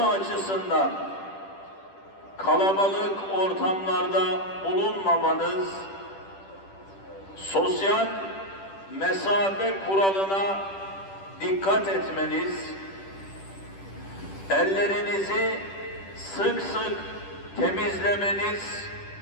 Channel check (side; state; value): right; late; 10 ms